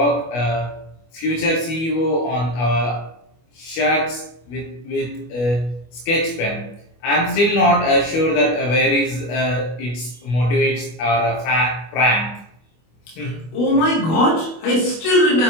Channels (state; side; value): late; right; 25 ms